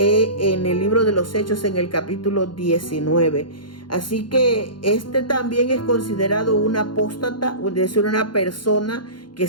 el libro de los Hechos, en el capítulo 19. Así que también es considerado un apóstata, es decir, una persona que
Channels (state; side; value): late; right; 0.72 ms